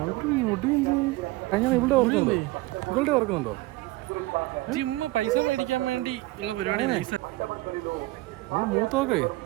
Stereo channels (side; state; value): left; quieter; 19.5 dB